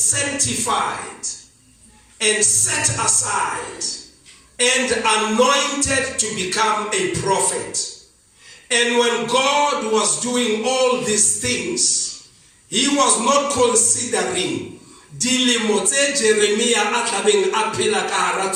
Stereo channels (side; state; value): both; identical; correlation 1.00